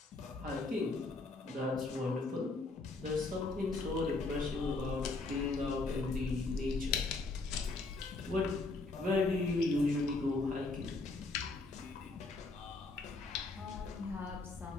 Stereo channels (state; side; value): quieter; right; 3.4 dB